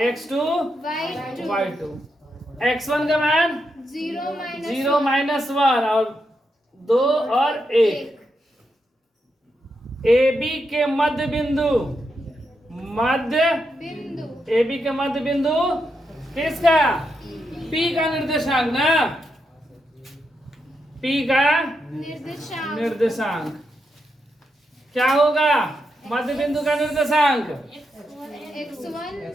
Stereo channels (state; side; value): normal; both; correlation 0.84